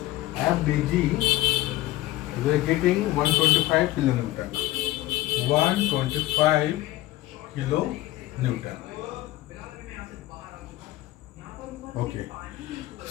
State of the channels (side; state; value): right; quieter; 16.6 dB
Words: FDG, we are getting 125 kilonewton. 125 kilonewton. Okay,